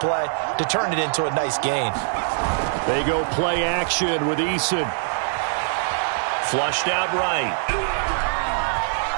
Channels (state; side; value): silent; left; digital silence